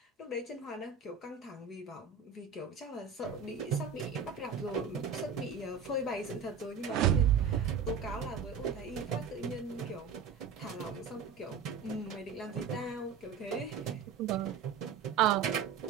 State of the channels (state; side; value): quieter; left; 6.2 dB